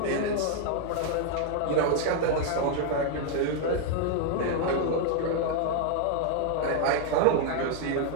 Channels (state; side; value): different; both; correlation 0.00